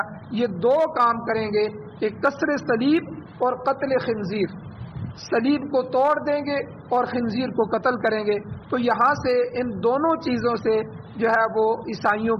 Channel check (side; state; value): both; identical; correlation 1.00